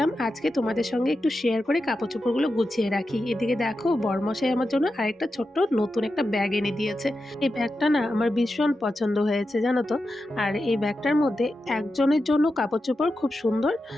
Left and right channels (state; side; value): normal; both; correlation 0.90